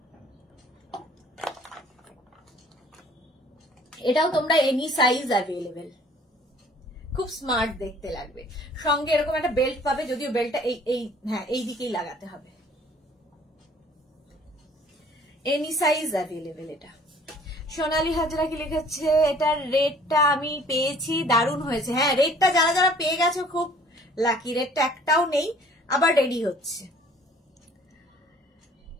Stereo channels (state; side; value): normal; both; correlation 0.54